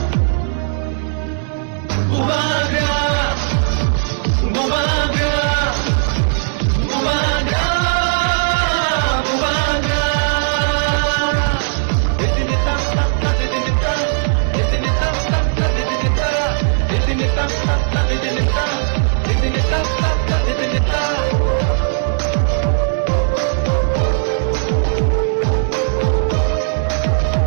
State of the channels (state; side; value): silent; left; digital silence